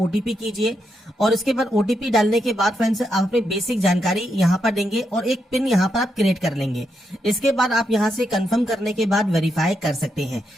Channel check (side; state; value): both; normal; correlation 0.82